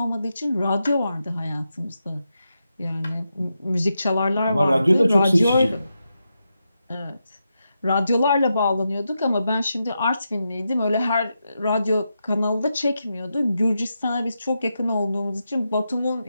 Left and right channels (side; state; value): both; inverted; correlation -0.87